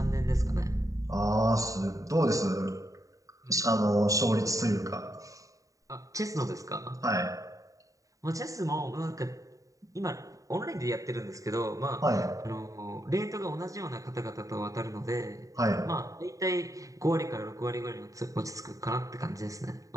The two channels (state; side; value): late; left; 0.16 ms